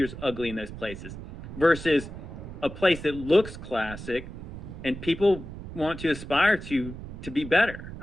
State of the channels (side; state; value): right; noise; rumble, 11 dB below the sound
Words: is ugly in those places versus a place that looks classic and people want to aspire to be better.